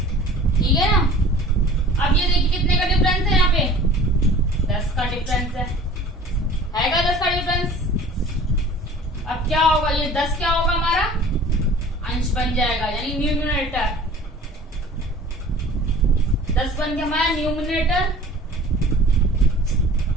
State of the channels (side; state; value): both; normal; correlation 0.45